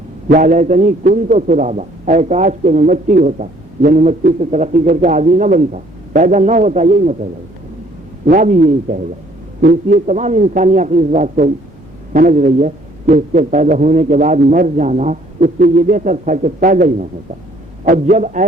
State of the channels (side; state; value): both; normal; correlation 0.61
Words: یا لیتنی کنت ترابا، اے کاش کہ میں مٹی ہوتا، یعنی مٹی سے ترقی کر کے آدمی نہ بنتا، پیدا نہ ہوتا، یہی مطلب ہے، نہ بھی یہی کہے گا۔ تو اس لیے تمام انسانی عقل اس بات کو سمجھ رہی ہے کہ اس کے پیدا ہونے کے بعد مر جانا اس سے یہ بہتر تھا کہ پیدا ہی نہ ہوتا، اور جب